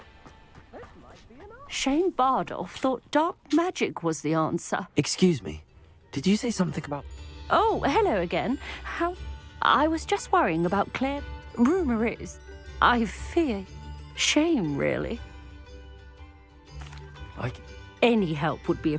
Shane Bardolph thought dark magic was the answer. Excuse me. Did you say something about... Oh, hello again. How... I was just worrying about Claire. Rumour is... I fear... Shame, really. Any help would be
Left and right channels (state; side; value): identical; both; correlation 1.00